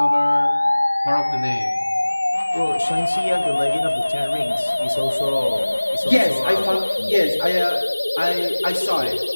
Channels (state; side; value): inverted; both; correlation -1.00